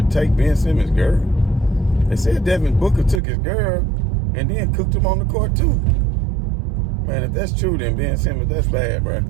take Ben Simmons' girl? They said Devin Booker took his girl and then cooked him on the court too. Man, if that's true, then Ben Simmons, that's bad, bro.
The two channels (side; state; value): left; drops out; at 3.2 s